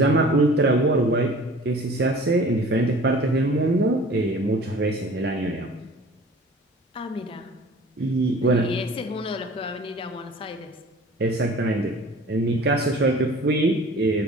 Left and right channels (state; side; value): normal; both; correlation 0.45